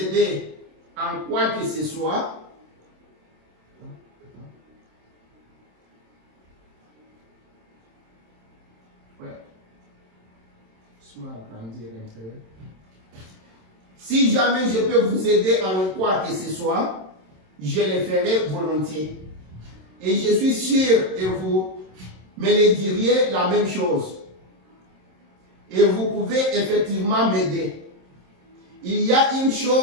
en quoi que ce soit, si jamais je peux vous aider en quoi que ce soit, je le ferai volontiers. Et je suis sûr que vous me le diriez la même chose. Et vous pouvez effectivement m'aider. Il y a une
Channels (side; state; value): left; late; 27 ms